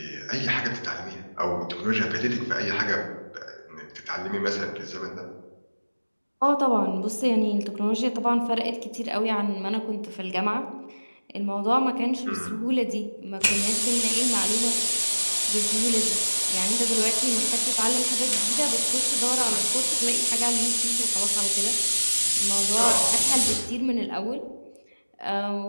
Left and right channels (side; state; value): both; inverted; correlation -1.00